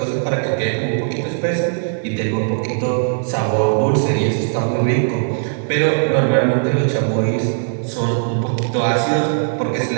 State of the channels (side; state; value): left; silent; digital silence